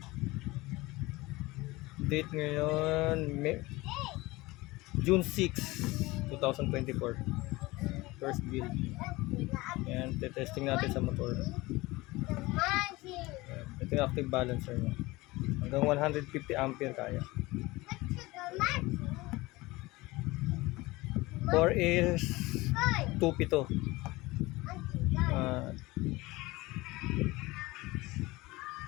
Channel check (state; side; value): quieter; right; 21.1 dB